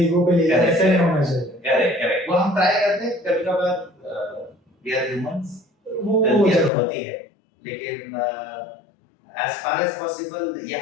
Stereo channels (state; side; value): drops out; right; at 6.7 s